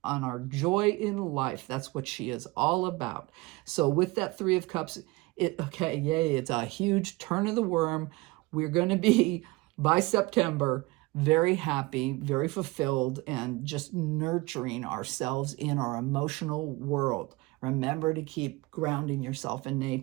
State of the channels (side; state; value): left; quieter; 22.6 dB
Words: our joy in life. That's what she is all about. So with that Three of Cups, it's a huge turn of the worm. We're going to be, by September, very happy, very fulfilled, and just nurturing ourselves in our emotional world. Remember to keep grounding yourself in